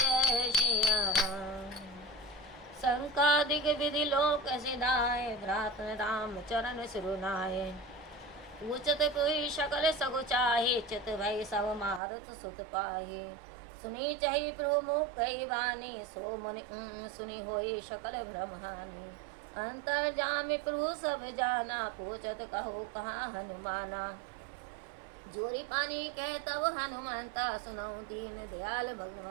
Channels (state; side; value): drops out; left; at 12.0 s